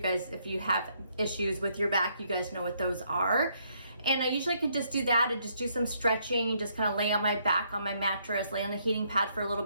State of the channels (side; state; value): both; inverted; correlation -0.71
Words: guys, if you have issues with your back, you guys know what those are. And I usually could just do that and just do some stretching, just kind of lay on my back on my mattress, lay on the heating pad for a little